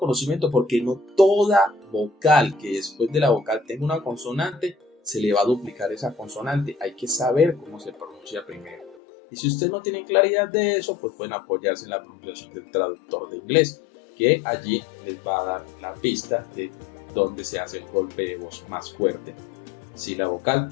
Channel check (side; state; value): right; drops out; at 9.0 s